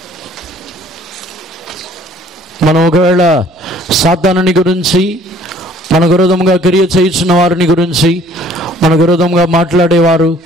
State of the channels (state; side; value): normal; both; correlation 0.56